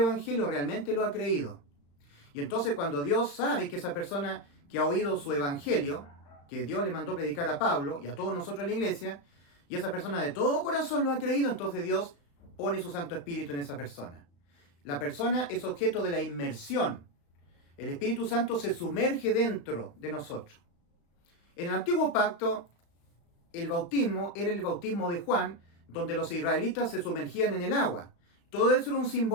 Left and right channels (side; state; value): right; late; 35 ms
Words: realmente lo ha creído. Y entonces cuando Dios sabe que esa persona que ha oído su Evangelio, que Dios le mandó predicar a Pablo y a todos nosotros en la iglesia, y esa persona de todo corazón lo ha creído, entonces Dios pone su Santo Espíritu en esa persona. La persona es objeto de la inmersión. El Espíritu Santo se sumerge dentro de nosotros. En el Antiguo Pacto, el bautismo era el bautismo de Juan, donde los israelitas se sumergían en el agua. Todo eso era un